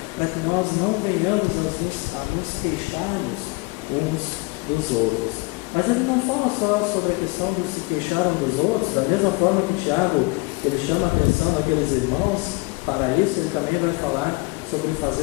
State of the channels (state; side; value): quieter; right; 26.5 dB